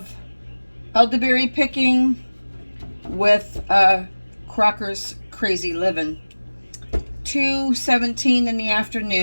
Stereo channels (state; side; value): inverted; both; correlation -1.00